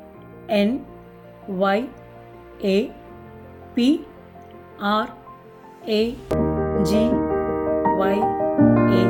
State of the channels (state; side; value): identical; both; correlation 1.00